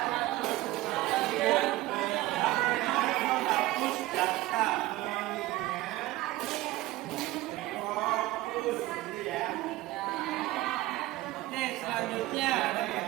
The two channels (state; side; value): quieter; left; 17.5 dB